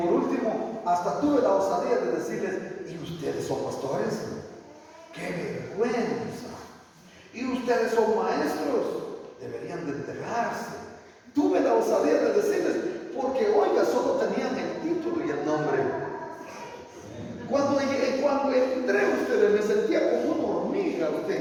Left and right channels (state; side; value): identical; both; correlation 1.00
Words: último, hasta tuve la osadía de decirles, ¿y ustedes son pastores? ¡Qué vergüenza! ¿Y ustedes son maestros? Deberían de enterarse. Tuve la osadía de decirles, porque oiga, solo tenían el título y el nombre. Cuando entré ustedes me sentía como una hormiga